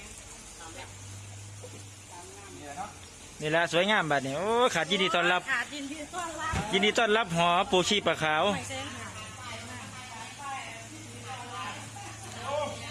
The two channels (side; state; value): both; identical; correlation 1.00